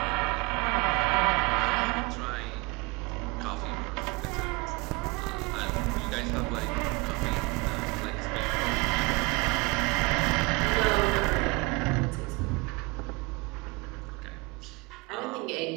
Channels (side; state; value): left; quieter; 26.5 dB